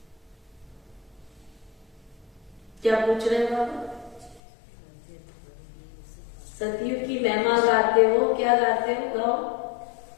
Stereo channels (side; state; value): right; drops out; at 4.4 s